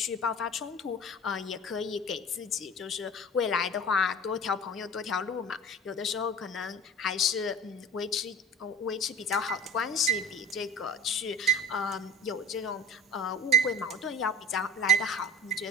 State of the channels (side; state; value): both; normal; correlation 0.40